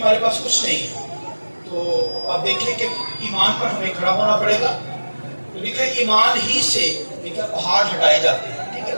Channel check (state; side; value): inverted; both; correlation -1.00